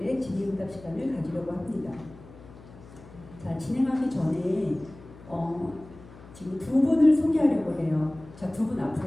질의응답 시간을 가지려고 합니다. 자, 진행하기 전에 지금 두 분을 소개하려고 해요. 자, 두 분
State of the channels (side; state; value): left; noise; hum, 20 dB below the sound